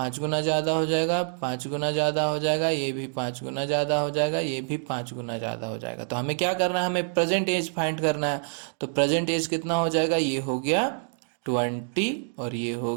गुना ज़्यादा हो जाएगा, 5 गुना ज़्यादा हो जाएगा, ये भी 5 गुना ज़्यादा हो जाएगा, ये भी 5 गुना ज़्यादा हो जाएगा। तो हमें क्या करना है, हमें प्रेजेंट एज फाइंड करना है। तो प्रेजेंट एज कितना हो जाएगा, ये हो गया 20 और ये हो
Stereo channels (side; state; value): left; silent; 60 dB below the other